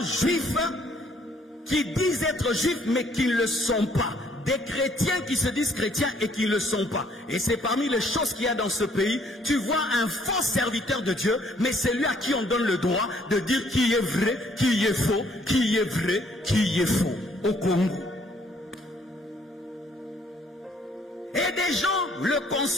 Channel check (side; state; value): both; normal; correlation 0.64